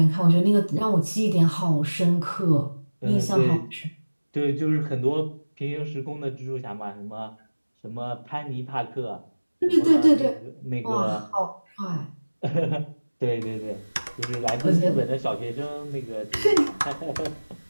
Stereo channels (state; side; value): inverted; both; correlation -1.00